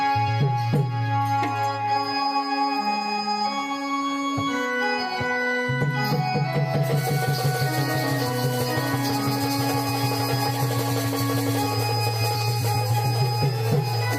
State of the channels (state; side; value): identical; both; correlation 1.00